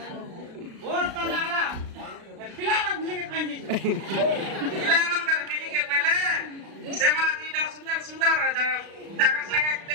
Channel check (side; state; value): left; late; 36 ms